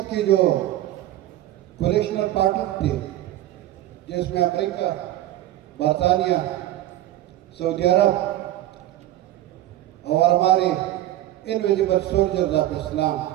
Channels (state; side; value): quieter; left; 14.0 dB